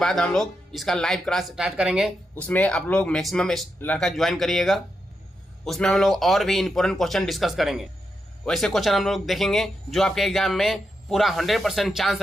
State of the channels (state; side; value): normal; both; correlation 0.85